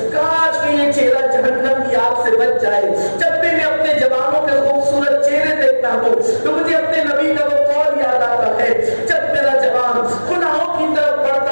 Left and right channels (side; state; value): both; inverted; correlation -1.00